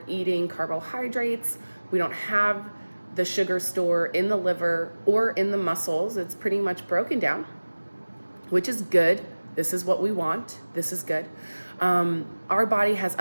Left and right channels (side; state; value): both; inverted; correlation -1.00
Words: eating carbohydrates. We don't have the sugar store in the liver or in the muscles. It's pretty much broken down, which is good. This is what we want. This is good. Our body has